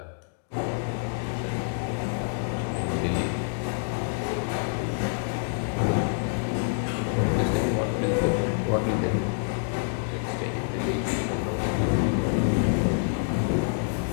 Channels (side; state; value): right; silent; digital silence